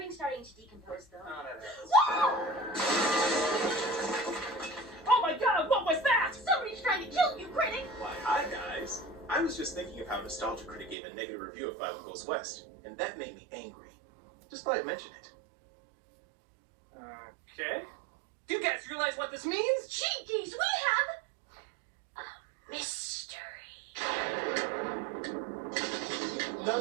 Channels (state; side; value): drops out; left; at 11.0 s